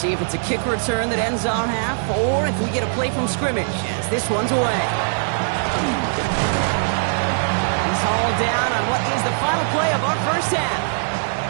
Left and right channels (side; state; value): left; silent; digital silence